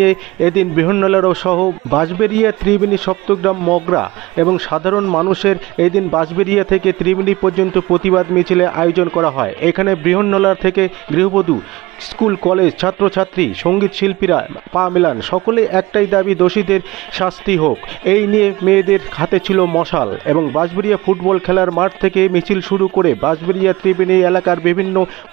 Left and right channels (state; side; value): quieter; left; 20.1 dB